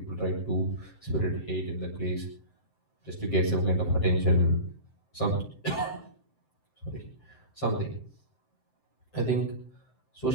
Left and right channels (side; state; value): right; late; 7.7 ms